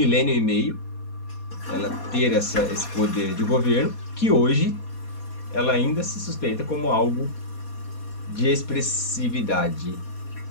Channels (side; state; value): right; late; 4.2 ms